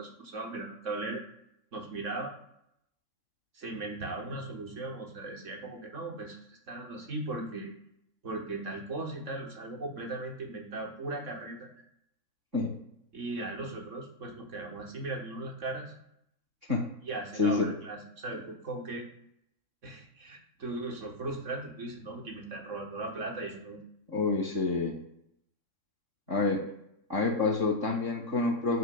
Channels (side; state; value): left; late; 3.6 ms